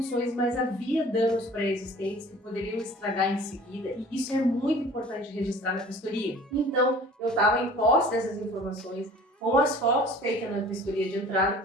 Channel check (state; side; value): normal; both; correlation 0.46